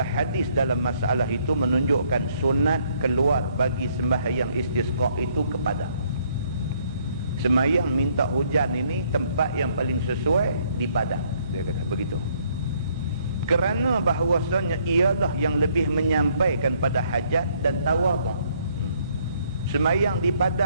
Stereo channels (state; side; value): inverted; both; correlation -0.66